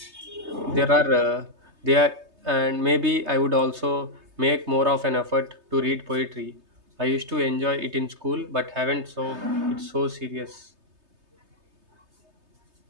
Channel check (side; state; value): left; late; 3.3 ms